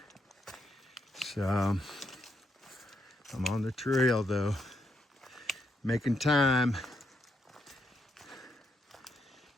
So I'm on the trail though, making time.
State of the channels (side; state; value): both; normal; correlation 0.79